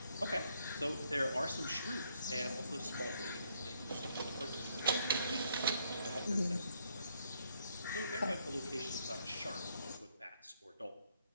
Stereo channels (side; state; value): both; inverted; correlation -0.71